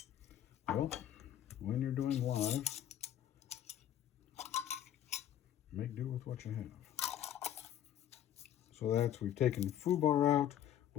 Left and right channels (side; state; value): right; quieter; 10.9 dB